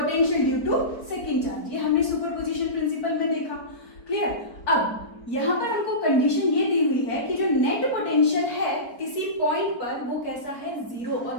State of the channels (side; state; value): right; late; 4.1 ms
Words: due to second charge. ये हमने सुपरपोजिशन प्रिंसिपल में देखा। क्लियर, अब यहाँ पर हमको कंडीशन ये दी हुई है कि जो नेट पोटेंशियल है किसी पॉइंट पर वो कैसा है, जीरो, और